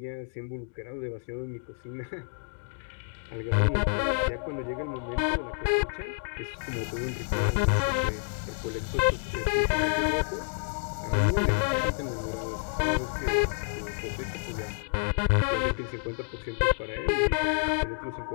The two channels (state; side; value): silent; right; digital silence